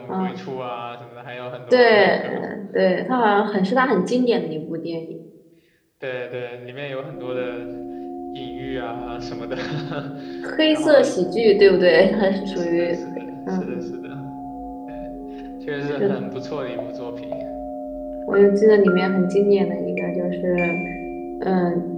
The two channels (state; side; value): identical; both; correlation 1.00